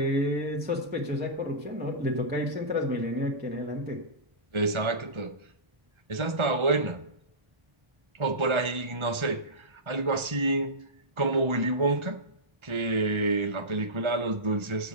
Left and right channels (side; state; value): left; late; 1.3 ms